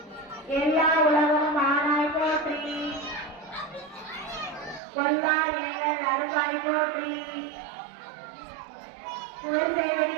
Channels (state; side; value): drops out; left; at 4.8 s